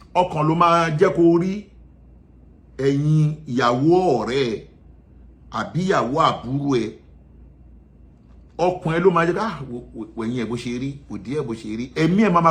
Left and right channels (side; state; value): both; identical; correlation 1.00